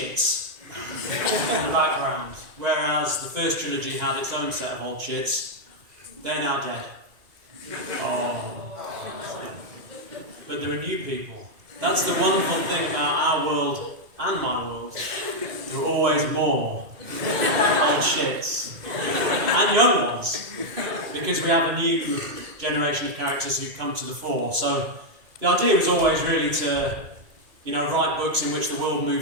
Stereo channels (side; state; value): left; late; 2.5 ms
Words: in the background, whereas the first trilogy had its own set of old shits. They're now dead. Oh. But there are new people. That's the wonderful thing about our world and my world. There are always more old shits. And young ones. Because we have a new generation of characters who come to the fore. So the idea was always really to, write books in which the world